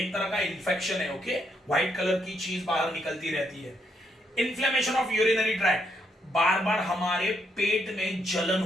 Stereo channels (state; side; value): normal; both; correlation 0.76